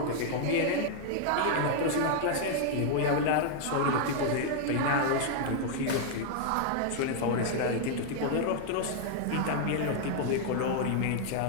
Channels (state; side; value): different; both; correlation 0.00